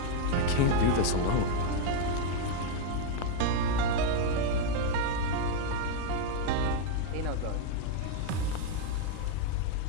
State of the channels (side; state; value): both; different; correlation 0.00